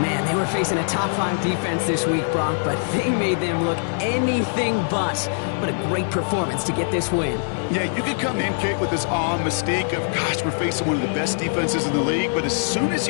they were facing a top-5 defense this week, Brock, but they made them look anything but. What a great performance to get this win. Yeah, you could come in, Kate, with this awe and mystique of, gosh, we're facing one of the best defenses in the league, but as soon as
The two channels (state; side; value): silent; right; digital silence